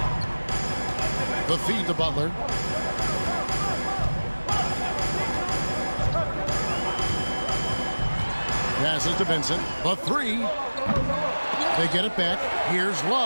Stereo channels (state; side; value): inverted; both; correlation -1.00